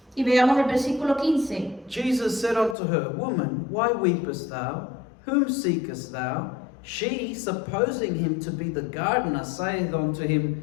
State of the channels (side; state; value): right; drops out; at 2.8 s